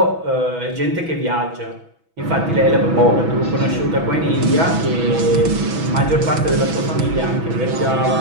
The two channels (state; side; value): late; left; 6.1 ms